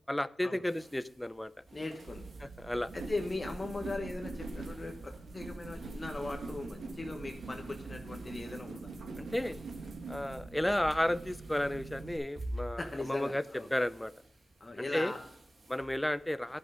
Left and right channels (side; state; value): both; normal; correlation 0.97